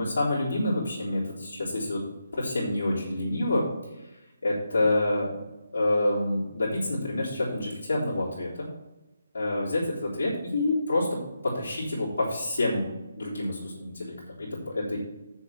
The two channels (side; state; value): both; inverted; correlation -0.86